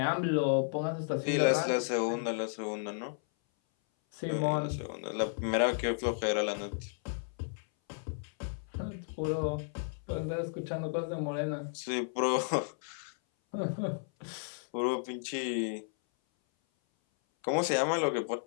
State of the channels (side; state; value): right; silent; 56 dB below the other